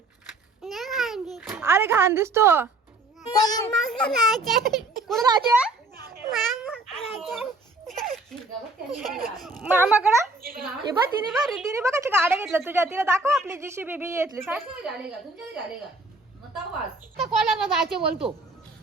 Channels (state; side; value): quieter; left; 3.0 dB